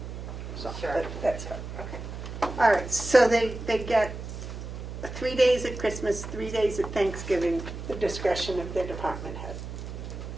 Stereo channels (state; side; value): noise; right; hum, 8 dB below the sound